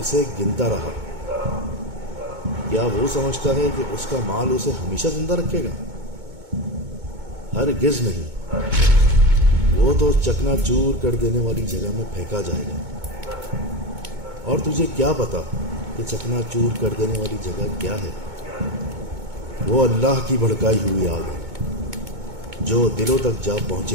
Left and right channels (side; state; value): left; late; 2.2 ms